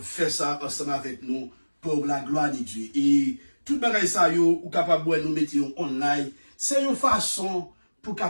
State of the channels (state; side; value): inverted; both; correlation -1.00